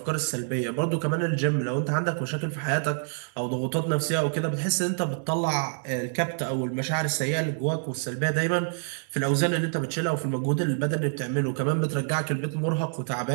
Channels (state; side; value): silent; left; digital silence